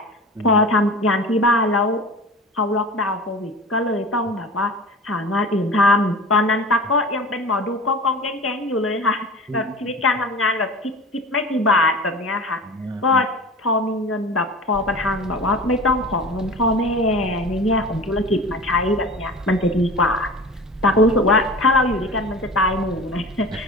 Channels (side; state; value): both; normal; correlation 0.35